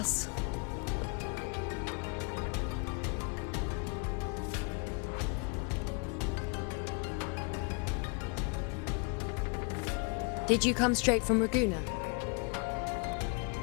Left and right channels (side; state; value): right; quieter; 35.4 dB